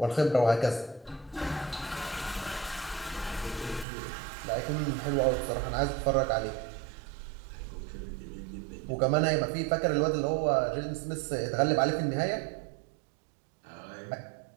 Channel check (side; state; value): left; drops out; at 3.9 s